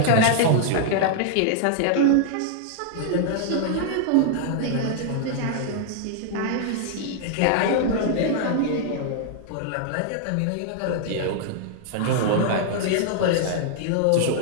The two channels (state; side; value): different; both; correlation -0.01